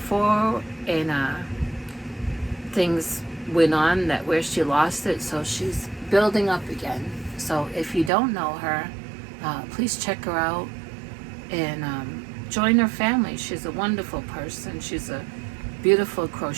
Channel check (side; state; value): left; drops out; at 8.1 s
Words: and things went on that where she lost it, so she's building up again. So if you don't know her, please check her out and join her family. She's a wonderful person. She's a beautiful